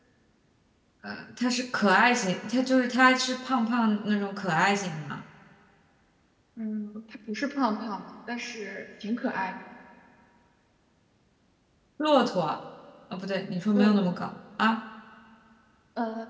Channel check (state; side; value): identical; both; correlation 1.00